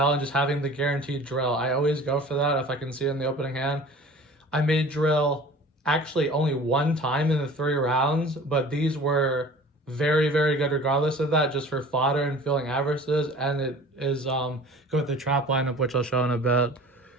and just having the guaranteed Drill. I always go for that if I can see it in the opening hand. I made Drill actually only 1 time in the 3 rounds, but these were very, very good regardless of that, just for fodder and filling averages. And it is go with the trap lineup, which I'll show in a bit.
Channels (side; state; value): both; normal; correlation 0.44